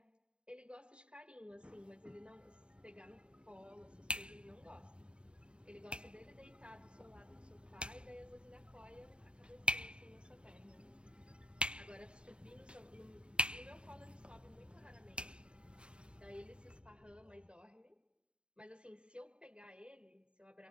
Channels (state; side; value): late; left; 0.053 ms